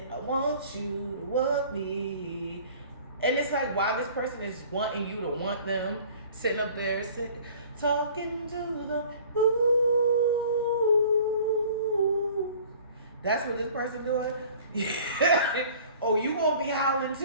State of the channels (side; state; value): both; inverted; correlation -0.49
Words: I want you to want me. And it's like, why this person is wanting you to want them, sitting up there, talking to them. Ooh. That's what this person doing? Oh, you gonna be howling